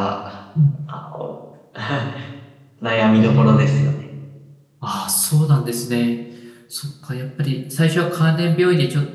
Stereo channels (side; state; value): both; identical; correlation 1.00